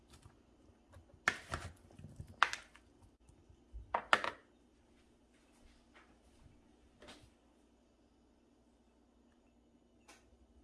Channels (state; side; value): identical; both; correlation 1.00